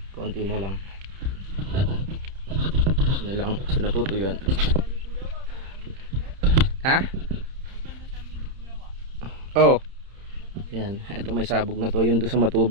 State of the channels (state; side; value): late; left; 30 ms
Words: Konti na lang. Ano lang, sinatutuyuan. Ha? Oh. Yan, ito may sabog na to. Yung doon sa